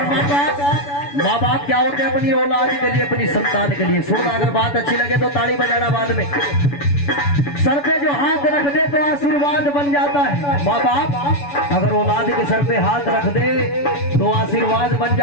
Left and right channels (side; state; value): right; late; 7.0 ms